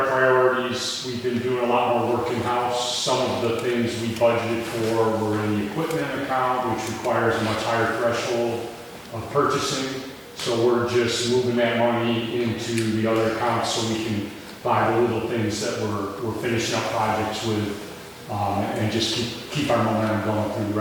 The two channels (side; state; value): both; identical; correlation 1.00